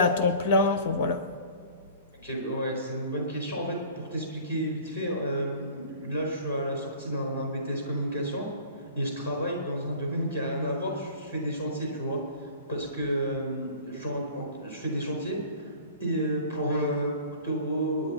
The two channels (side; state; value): both; inverted; correlation -0.46